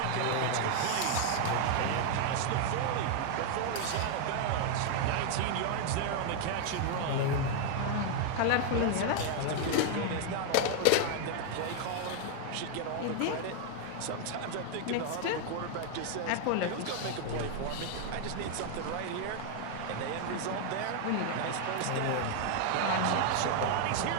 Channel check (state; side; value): different; both; correlation 0.00